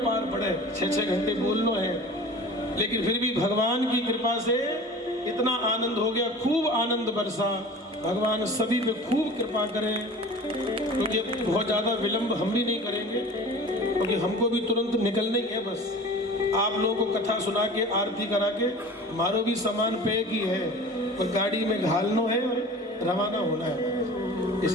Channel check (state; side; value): normal; both; correlation 0.40